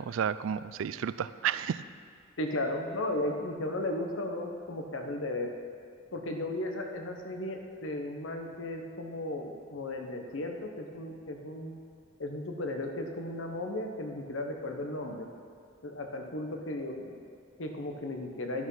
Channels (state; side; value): normal; both; correlation 0.09